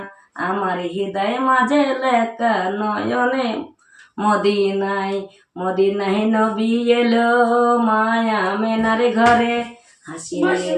আমার হৃদয় মাঝে লেখা নয়নে মদিনায়। মদিনায় নবী এলো মায়া মেনার ঘরে, হাসিলে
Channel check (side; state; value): both; identical; correlation 1.00